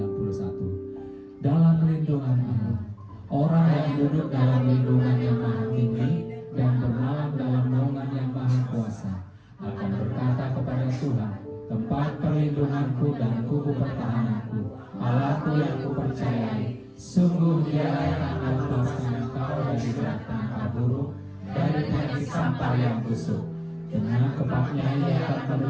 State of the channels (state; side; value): identical; both; correlation 1.00